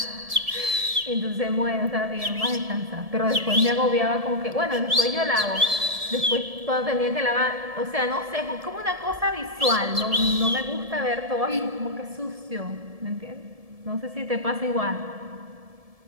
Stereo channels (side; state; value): left; late; 1.7 ms